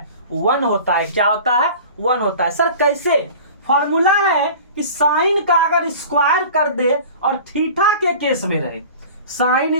1 होता है। क्या होता है, 1 होता है। सर कैसे, फॉर्मूला है कि साइन का अगर स्क्वायर कर दे और थीटा के केस में रहे,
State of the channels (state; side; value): inverted; both; correlation -0.40